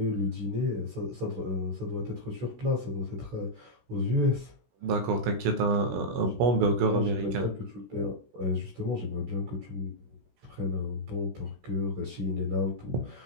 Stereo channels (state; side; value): late; left; 16 ms